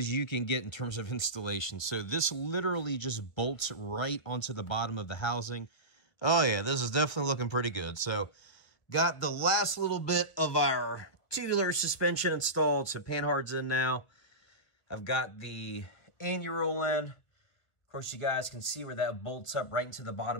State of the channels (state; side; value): late; right; 1.8 ms